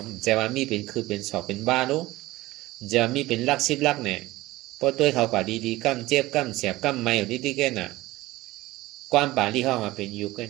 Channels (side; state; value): left; quieter; 18.4 dB